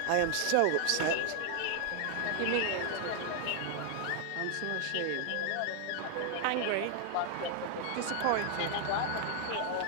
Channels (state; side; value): different; both; correlation 0.00